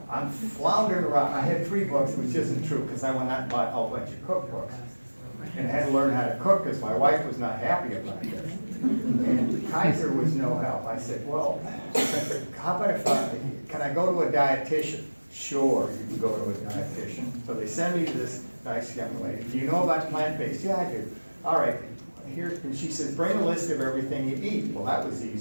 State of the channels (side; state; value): both; inverted; correlation -1.00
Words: I'm floundering around. I had 3 books, which isn't true because I went out and bought a whole bunch of cookbooks and had to learn how to cook because my wife was not happy about this. And Kaiser was no help. I said, well, how about can I go to a dietitian? Sure, you can go to a dietitian. So they send me to this nice young lady. Do you know about plant-based? Yeah, I do. All right, here, and she says, bring a list of everything you eat. Well, that was